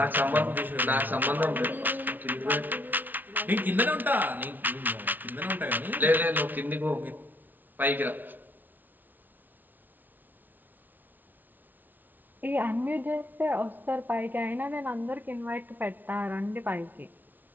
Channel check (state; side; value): late; left; 0.085 ms